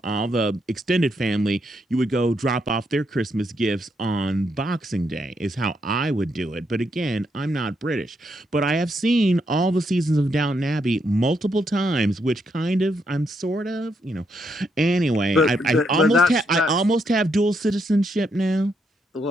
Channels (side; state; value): both; normal; correlation 0.78